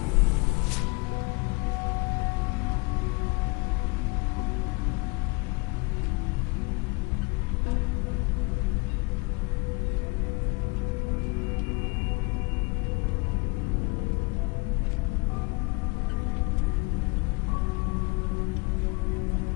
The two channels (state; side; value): quieter; right; 28.2 dB